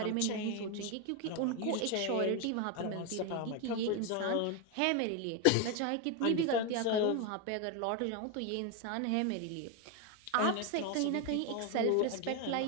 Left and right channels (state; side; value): different; both; correlation 0.02